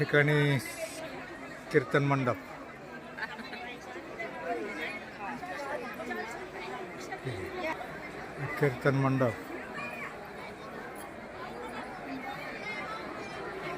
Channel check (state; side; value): identical; both; correlation 1.00